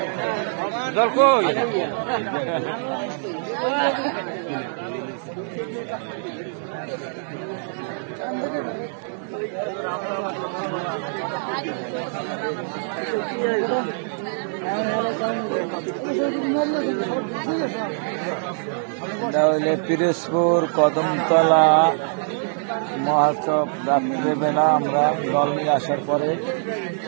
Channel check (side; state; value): left; silent; digital silence